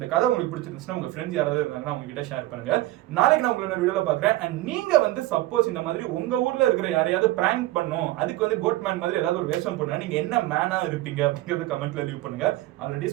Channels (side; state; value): left; quieter; 17.1 dB